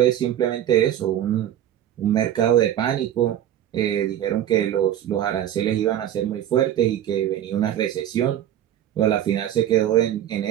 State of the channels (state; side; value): quieter; left; 11.2 dB